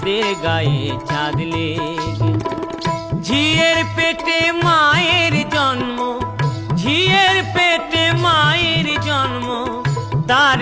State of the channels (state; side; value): identical; both; correlation 1.00